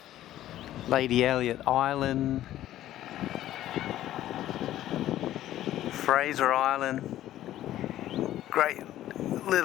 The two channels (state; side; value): quieter; right; 13.3 dB